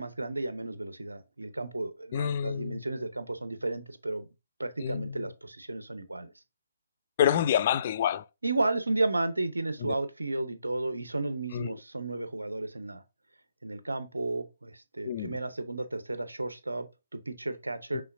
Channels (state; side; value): inverted; both; correlation -0.77